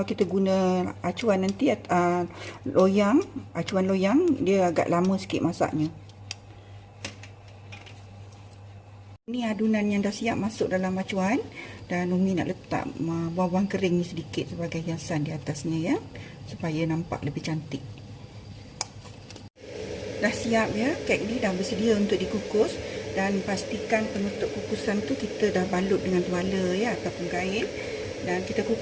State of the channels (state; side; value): identical; both; correlation 1.00